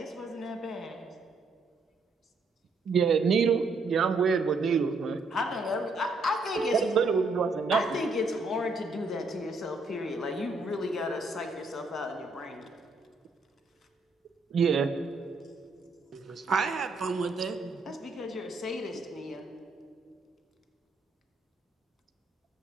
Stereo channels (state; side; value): quieter; left; 3.3 dB